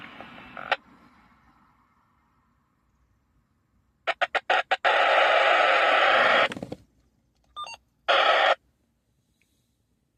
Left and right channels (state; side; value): identical; both; correlation 1.00